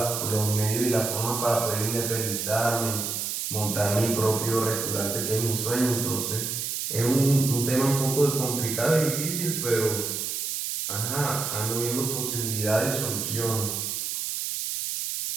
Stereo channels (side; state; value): right; noise; hiss, 3 dB below the sound